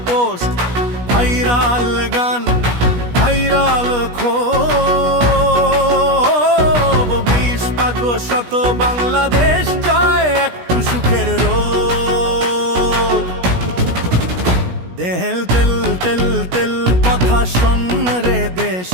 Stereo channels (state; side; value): late; left; 17 ms